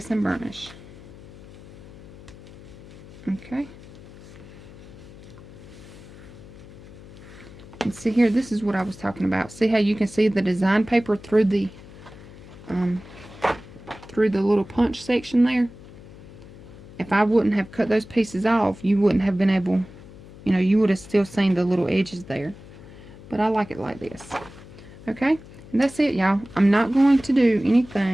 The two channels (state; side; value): noise; left; hum, 18 dB below the sound